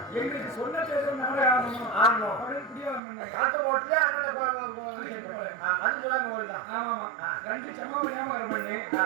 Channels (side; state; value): left; drops out; at 3.0 s